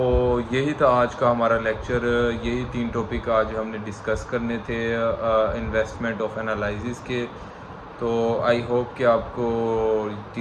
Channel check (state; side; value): identical; both; correlation 1.00